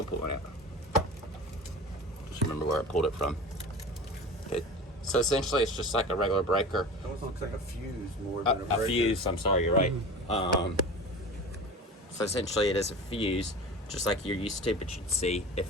pull one out. Just remember where I pulled it from. Okay. So essentially, it's just like a regular breaker. It almost looks like a fuse more than a breaker. A fuse. I'm sorry, you're right. So essentially, it is a fuse, just like you're used to. But you'd see if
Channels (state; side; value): normal; both; correlation 0.35